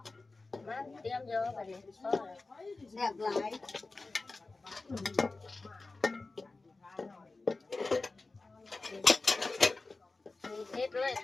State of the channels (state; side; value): quieter; right; 3.5 dB